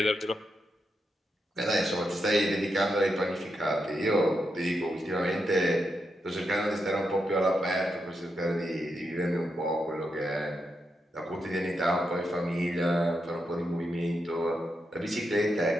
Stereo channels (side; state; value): both; normal; correlation 0.84